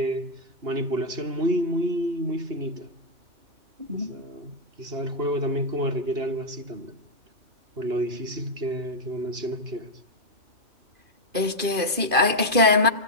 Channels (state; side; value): late; left; 2.5 ms